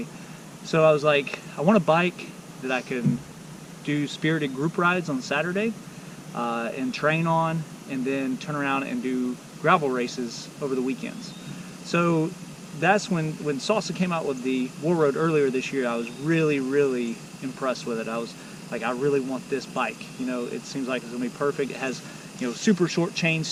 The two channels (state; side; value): identical; both; correlation 1.00